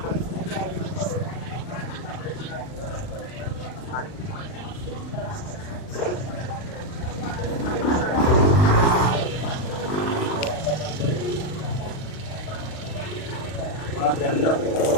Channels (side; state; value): right; late; 39 ms